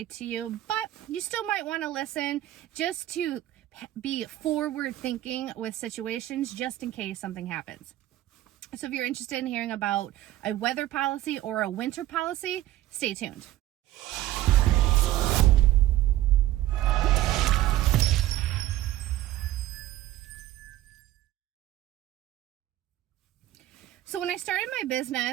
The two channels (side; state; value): left; quieter; 14.6 dB